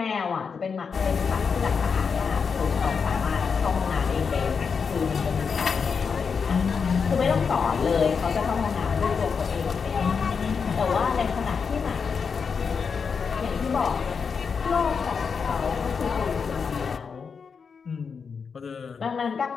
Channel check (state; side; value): quieter; right; 5.8 dB